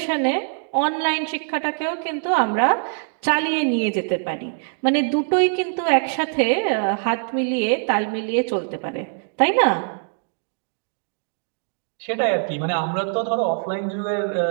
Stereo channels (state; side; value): silent; left; digital silence